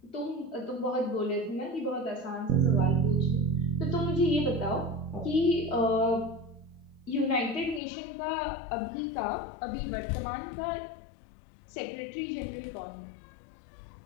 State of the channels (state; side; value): drops out; right; at 7.8 s